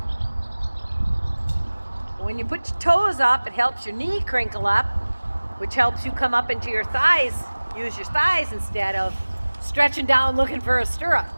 When you put your toes up, it helps your knee crinkle up, which helps you come up into your thighs. Use your thighs instead of stretching down looking for a stirrup.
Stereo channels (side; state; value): both; inverted; correlation -1.00